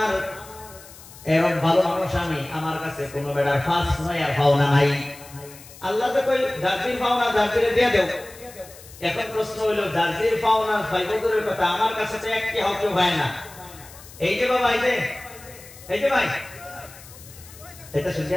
এরকম ভালো মানুষ আমি, আমার কাছে কোনো বেড়ার ফাঁস নয় আর পাওনা নাই। আল্লাহ তো কই জারদির পাওনা জারদিরে দিয়ে দেও। এখন প্রশ্ন হইল জারদির পাওনা ফাইবুরের কথা, আমার কাছে তো একটি হক হয় না। এই যে বাবা, এই যে ভাই, এটা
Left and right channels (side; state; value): left; noise; hiss, 19 dB below the sound